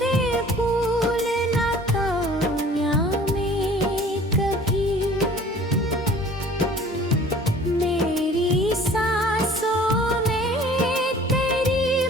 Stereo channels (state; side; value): normal; both; correlation 0.49